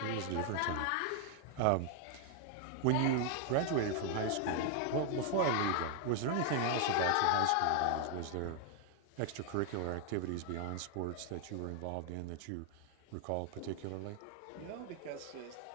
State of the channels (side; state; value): both; different; correlation 0.00